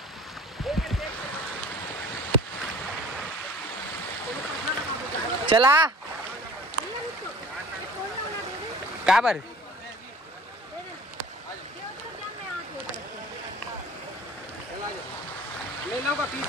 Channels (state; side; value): normal; both; correlation 0.48